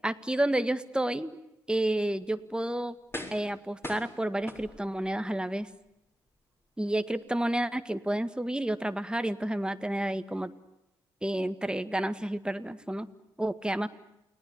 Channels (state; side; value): normal; both; correlation 0.95